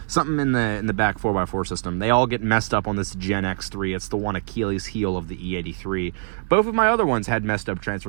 Something in the back 4x4 system. They all get messed up on this Gen X3. It's the one Achilles heel of the E83. Both of my other ones had messed up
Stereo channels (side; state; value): left; silent; digital silence